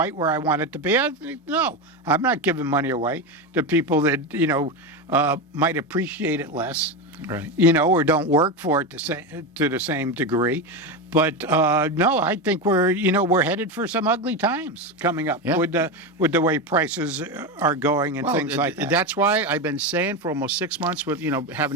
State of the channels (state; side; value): normal; both; correlation 0.16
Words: where I want it to be, no, I'm not giving money away to people that, might appreciate it less. Right. Or don't work for it to the same degree. But no, I think we're headed for some ugly times coming up with the way prices are going and things like that. That's why I've been saying for almost 6 months with